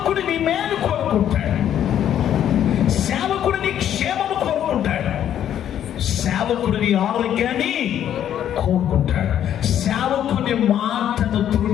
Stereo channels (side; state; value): right; quieter; 10.4 dB